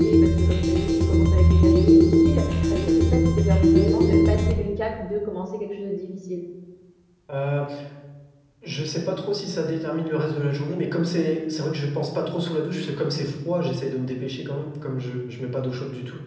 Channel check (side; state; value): both; identical; correlation 1.00